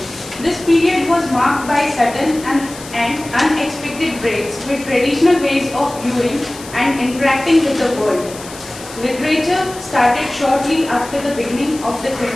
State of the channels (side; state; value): left; noise; hiss, 16 dB below the sound